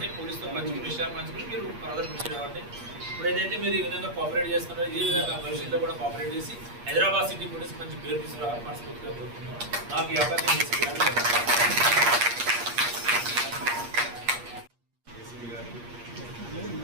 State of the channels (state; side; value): late; left; 8.5 ms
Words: పోలీస్తో పంచుకునే విషయాలు పంచుకుని మీరు ఫర్దర్ కృషి అవ్వండి. ఇప్పుడు ఏదైతే మీరు ఈ విధంగా కోఆపరేట్ చేస్తున్నారో ఈ విధంగా భవిష్యత్తులో కూడా కోఆపరేట్ చేసి హైదరాబాద్ సిటీ పోలీస్ మంచి పేరు తీసుకురావాలని మనస్ఫూర్తిగా కోరుతున్నాను. నాకు ఈ అవకాశం